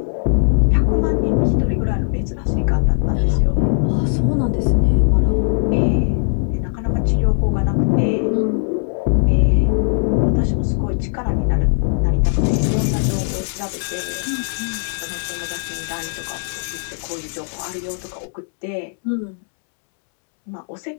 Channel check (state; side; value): silent; right; 66 dB below the other